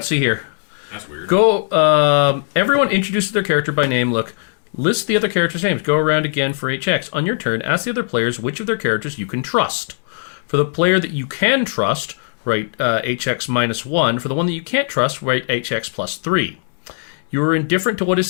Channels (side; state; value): right; silent; 65 dB below the other